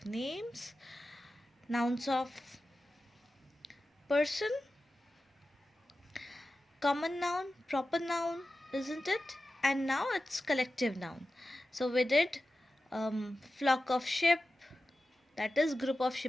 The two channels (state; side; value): normal; both; correlation 0.94